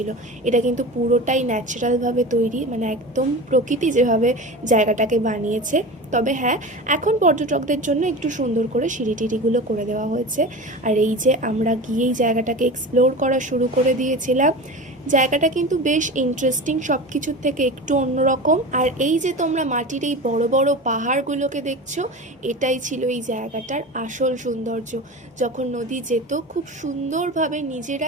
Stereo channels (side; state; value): both; normal; correlation 0.31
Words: এটা কিন্তু পুরোটাই ন্যাচারালভাবে তৈরি, মানে একদম প্রকৃতি যেভাবে জায়গাটাকে বানিয়েছে। তবে হ্যাঁ, এখন পর্যটকদের জন্য একটু সুন্দর করে সিঁড়ি টিড়িগুলো করে দেওয়া হয়েছে। আর এই যে আমরা গিয়েই জায়গাটাকে এক্সপ্লোর করা শুরু করে দিয়েছিলাম। জায়গাটা কিন্তু বেশ ইন্টারেস্টিং, সব কিছুর থেকে একটু অন্যরকম। আর এই যে তোমরা মাটির এই বড় বড় পাহাড়গুলোকে দেখছো, এটাই ছিল এই জায়গাটার আসল সৌন্দর্য। যখন নদী যেত খুব সুন্দরভাবে